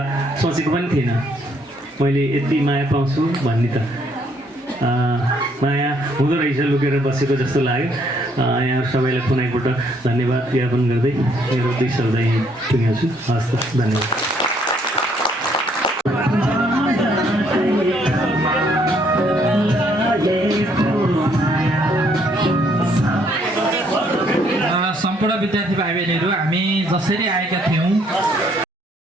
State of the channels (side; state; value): both; normal; correlation 0.68